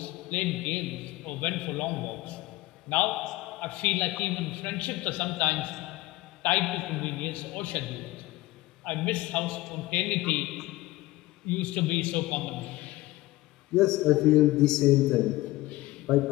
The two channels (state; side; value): quieter; right; 18.6 dB